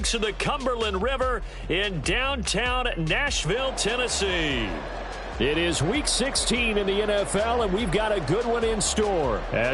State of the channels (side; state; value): both; identical; correlation 1.00